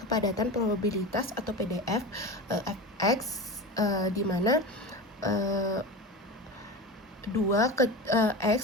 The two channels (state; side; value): normal; both; correlation 0.28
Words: probabilitas atau PDF fx, di mana